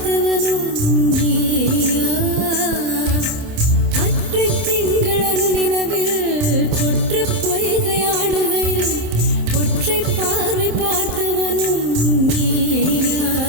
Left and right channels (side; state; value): left; late; 27 ms